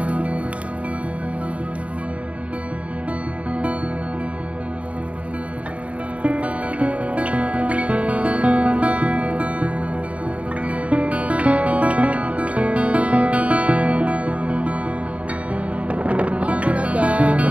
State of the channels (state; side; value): late; left; 0.065 ms